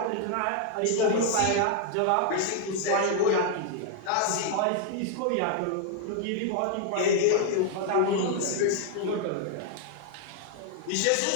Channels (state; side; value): different; both; correlation 0.00